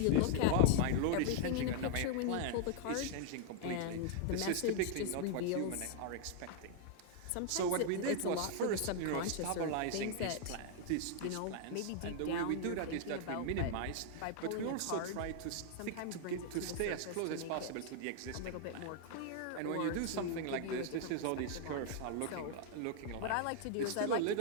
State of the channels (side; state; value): both; different; correlation 0.00